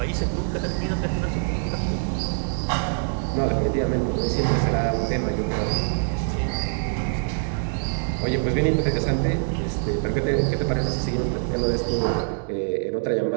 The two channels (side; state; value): left; silent; digital silence